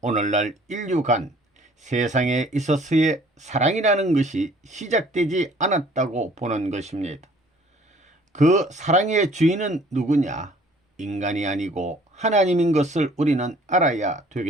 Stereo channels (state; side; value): normal; both; correlation 0.56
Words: 오늘날 인류간 세상에 있어서의 사랑이라는 것이 시작되지 않았다고 보는 것입니다. 그 사랑의 주인은 누구냐? 인간이 아니고 하나님인 것을 우리는 알아야